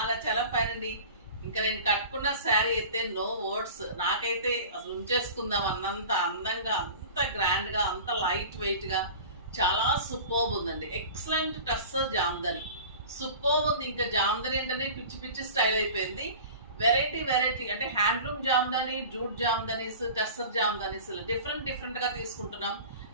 చాలా ఫైన్ అండి. ఇంకా నేను కట్టుకున్న శారీ అయితే నో వర్డ్స్. నాకైతే అసలు ఉంచేసుకుందాం అన్నంత అందంగా, అంత గ్రాండ్ గా, అంత లైట్ వెయిట్ గా, చాలా సూపర్బ్ ఉందండి. ఎక్సలెంట్ టస్సర్ జామ్దని, సూపర్బ్ ఉంది. ఇంకా జామ్దని ఏంటనే పిచ్చి పిచ్చి స్టైల్ అయిపోయింది. వెరైటీ వెరైటీ అంటే handloom Jamdani, jute jamdanis, tussar jamdanis different గా తీసుకుంటున్నాం.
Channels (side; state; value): both; inverted; correlation -0.39